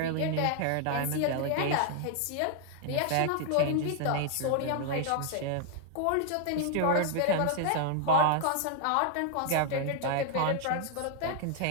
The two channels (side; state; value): both; different; correlation 0.00